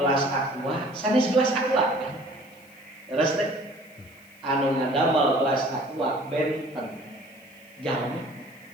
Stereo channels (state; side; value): noise; left; hiss, 28 dB below the sound